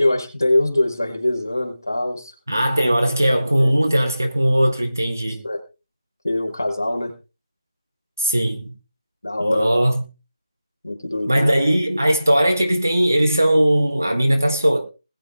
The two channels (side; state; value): both; inverted; correlation -0.94